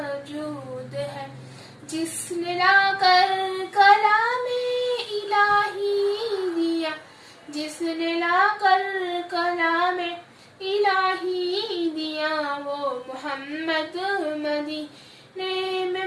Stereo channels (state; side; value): identical; both; correlation 1.00